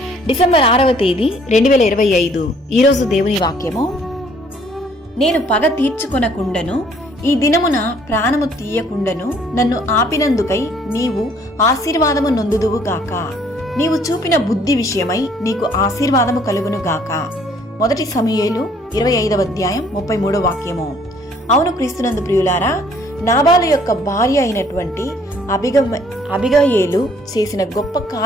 డిసెంబర్ 6వ తేదీ 2025. ఈరోజు దేవుని వాక్యము. నేను పగ తీర్చుకొనకుండను, ఈ దినమున ప్రాణము తీయకుండను నన్ను ఆపినందుకై నీవు ఆశీర్వాదము నొందుదువు గాక. నీవు చూపిన బుద్ధి విషయమై నీకు ఆశీర్వాదము కలుగును గాక. 1 సమూయేలు 25వ అధ్యాయం 33వ వాక్యము. అవును క్రీస్తునందు ప్రియులారా, నాబాలు యొక్క భార్య అయినటువంటి అబిగయేలు చేసిన గొప్ప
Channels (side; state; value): both; normal; correlation 0.61